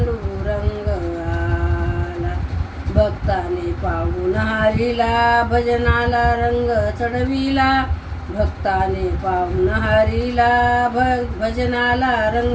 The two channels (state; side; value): identical; both; correlation 1.00